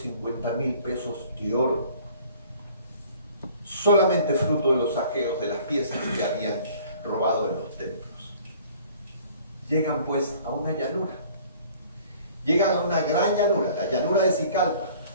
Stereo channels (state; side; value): inverted; both; correlation -0.52